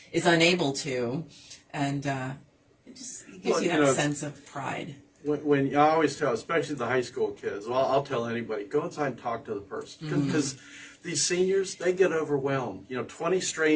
is unable to, and it just gives you that sense of pride. When I always tell, especially the high school kids, I'll tell anybody, go inside and talk to the person, because these seniors, they get overwhelmed. 20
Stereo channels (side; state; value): both; identical; correlation 1.00